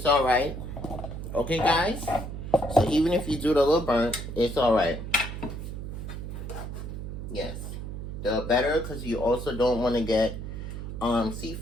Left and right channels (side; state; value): right; noise; hum, 7 dB below the sound